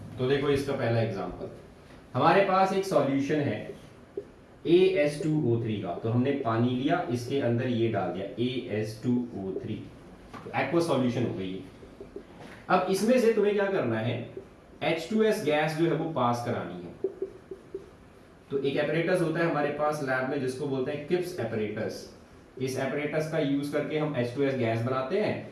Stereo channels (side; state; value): both; identical; correlation 1.00